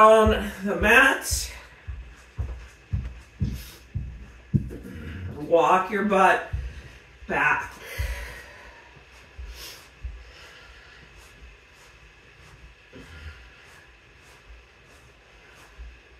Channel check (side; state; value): both; identical; correlation 1.00